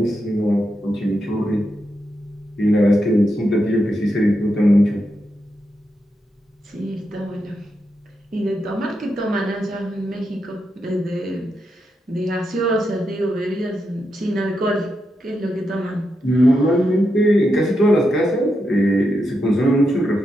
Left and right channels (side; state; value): both; normal; correlation 0.85